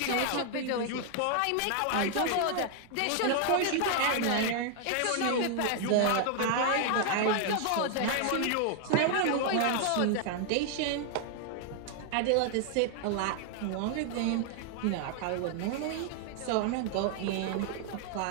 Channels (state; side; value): different; both; correlation 0.00